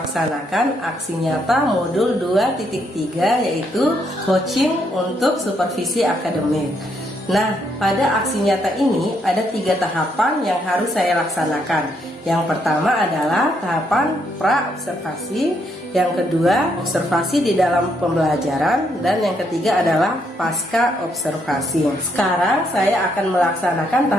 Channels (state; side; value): normal; both; correlation 0.75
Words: aksi nyata modul 2.3, yaitu coaching untuk supervisi akademik. Nah, pada aksi nyata ini ada 3 tahapan yang harus saya laksanakan. Yang pertama adalah tahapan pra-observasi, yang kedua observasi di dalam pembelajaran, dan yang ketiga adalah pasca observasi. Sekarang saya akan melaksanakan